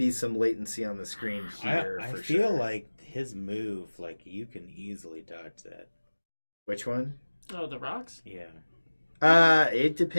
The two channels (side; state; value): both; inverted; correlation -1.00